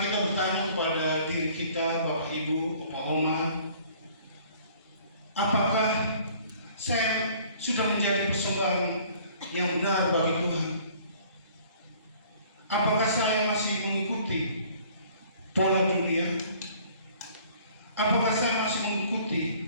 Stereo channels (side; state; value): both; inverted; correlation -0.55